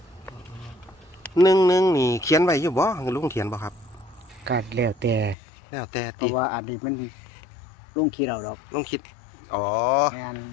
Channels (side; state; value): right; drops out; at 5.4 s